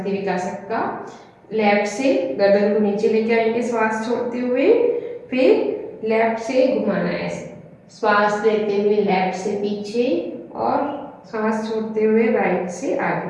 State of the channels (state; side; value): identical; both; correlation 1.00